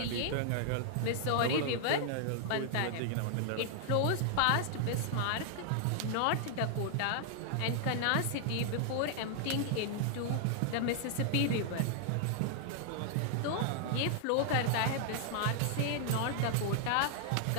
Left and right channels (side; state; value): both; different; correlation 0.00